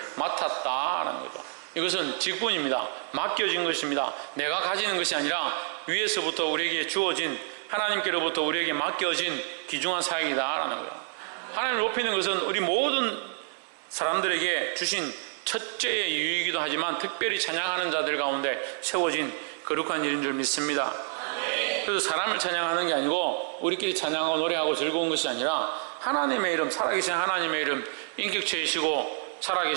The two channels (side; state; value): left; silent; digital silence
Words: 맡았다라는 거죠. 이것은 직분입니다. 맡겨진 것입니다. 내가 가지는 것이 아니라 위에서부터 우리에게 주어진, 하나님께로부터 우리에게 맡겨진 귀중한 사역이다라는 거예요. 하나님을 높이는 것은 우리 모든 사람들에게 주신 첫째의 이유이기도 하지만 특별히 찬양하는 자들 가운데 세워진 거룩한 일인 줄 믿습니다. 그래서 사람을 찬양하는 게 아니고 우리끼리 찬양하고 노래하고 즐거운 것이 아니라 하나님의 이름, 살아계신 하나님의 이름, 인격체이시고